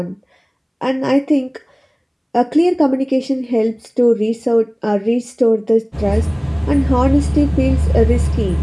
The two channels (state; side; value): identical; both; correlation 1.00